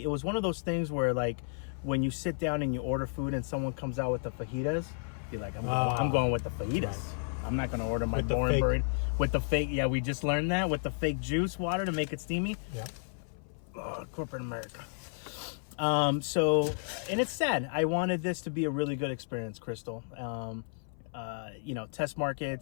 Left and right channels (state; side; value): silent; right; 56 dB below the other